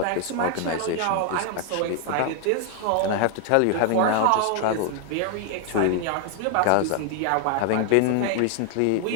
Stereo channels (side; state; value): both; different; correlation 0.00